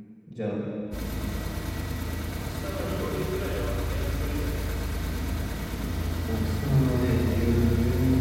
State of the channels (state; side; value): identical; both; correlation 1.00